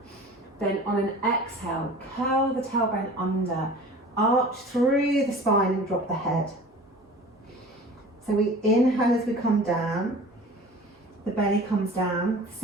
Then on an exhale, curl the tailbone under, arch through the spine and drop the head. So we inhale as we come down, the belly comes down, the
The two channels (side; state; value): both; normal; correlation 0.42